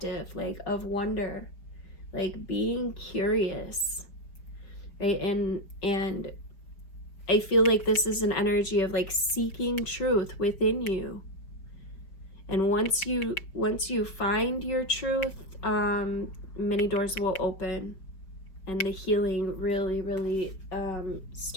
like of wonder, like being curious, right? And I feel like this is an energy of like seeking truth within you. And once you find your truth, many doors will open, and the healing really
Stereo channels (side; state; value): right; late; 5.2 ms